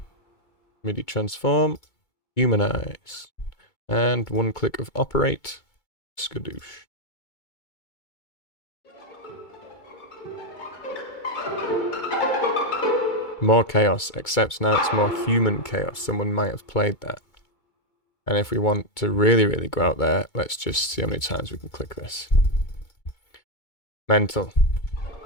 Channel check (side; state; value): right; late; 2.2 ms